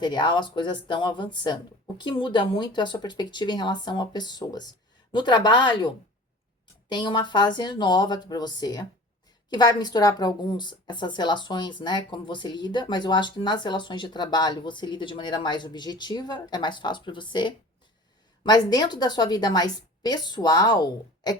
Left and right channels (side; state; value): both; normal; correlation 0.42